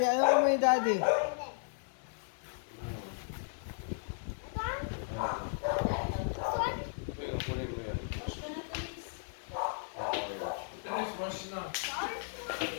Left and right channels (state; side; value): silent; right; 54 dB below the other